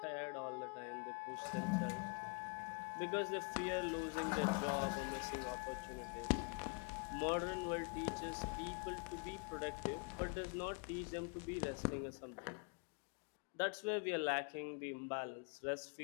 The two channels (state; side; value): quieter; right; 35.2 dB